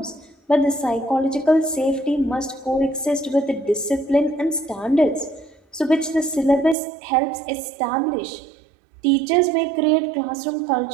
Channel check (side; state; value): left; drops out; at 6.8 s